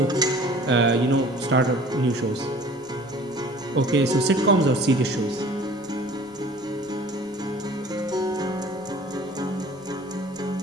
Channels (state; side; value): noise; left; rumble, 29 dB below the sound